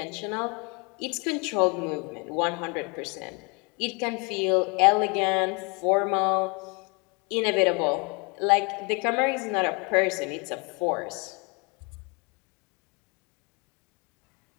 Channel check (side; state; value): right; quieter; 31.5 dB